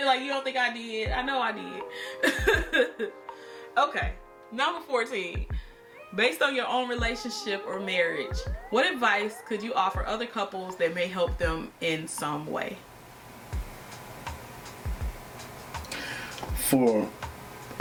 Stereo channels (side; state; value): both; identical; correlation 1.00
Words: like you don't think I did. I know I did. Okay, number 14. Based on your own relationship or marriage, what advice could you offer other couples that may help them in some way?